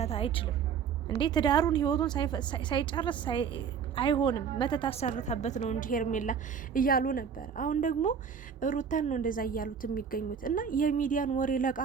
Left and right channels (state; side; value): quieter; left; 6.9 dB